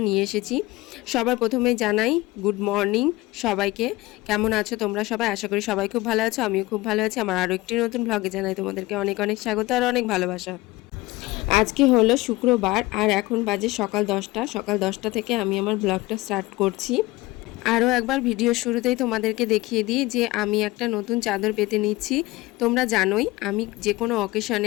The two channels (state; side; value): quieter; right; 20.0 dB